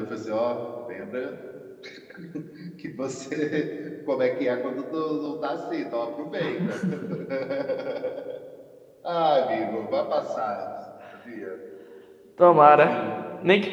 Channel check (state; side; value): identical; both; correlation 1.00